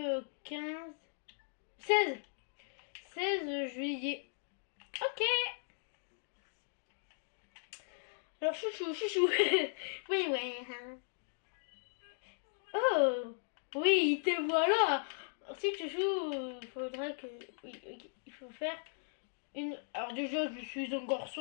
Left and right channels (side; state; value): right; silent; digital silence